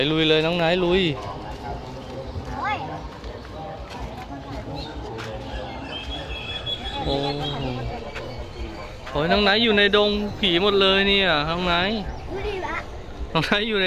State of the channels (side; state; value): both; identical; correlation 1.00